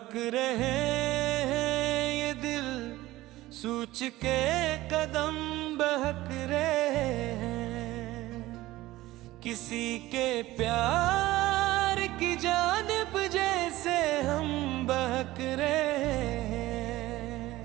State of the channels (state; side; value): quieter; left; 17.2 dB